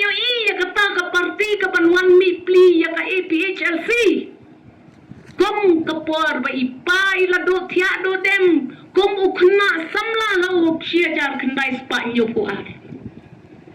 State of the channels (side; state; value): both; identical; correlation 1.00